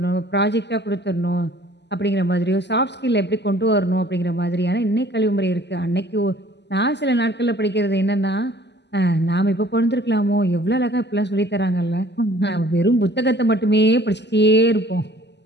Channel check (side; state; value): right; late; 0.50 ms